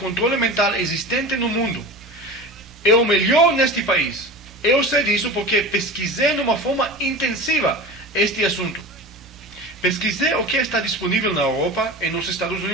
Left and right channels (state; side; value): normal; both; correlation 0.32